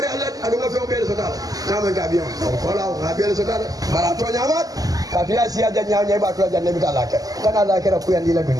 Allah adu nga fe be so dal kama gabion ko la gabion so dal bara to nyamat kafia siya janya nya ba to janne bita lake kana lake ra kuyandi la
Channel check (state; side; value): late; left; 0.17 ms